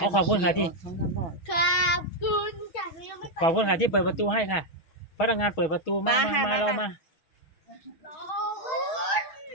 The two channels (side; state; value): right; late; 6.2 ms